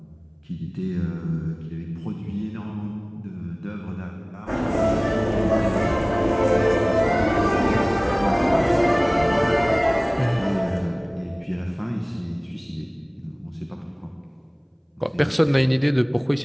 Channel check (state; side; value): identical; both; correlation 1.00